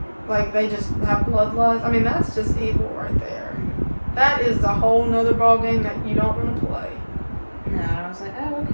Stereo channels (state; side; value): inverted; both; correlation -1.00